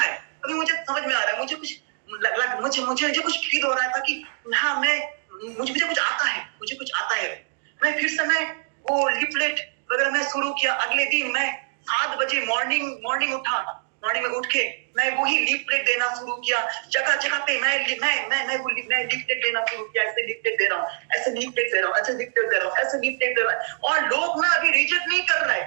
अभी मुझे समझ में आ रहा है। मुझे कुछ मुझे कुछ फील हो रहा था कि हाँ मुझे कुछ आता है। मैं फिर से मैं वो लिफलेट वगैरह मैं शुरू किया। अगले दिन मैं 7 बजे मॉर्निंग उठा, मॉर्निंग में उठ के मैं वही लीफलेट देना शुरू किया, जगह जगह पे मैं लीफलेट देना शुरू किया, ऐसे लीफलेट दे रहा हूँ, ऐसे लीफलेट दे रहा हूँ, ऐसे लीफलेट दे रहा हूँ, ऐसे लीफलेट दे रहा है। और लोग ना अभी रिजेक्ट नहीं कर रहे,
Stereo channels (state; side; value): silent; left; digital silence